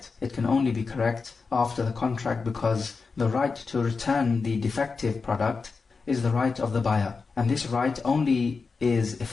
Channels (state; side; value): quieter; right; 4.6 dB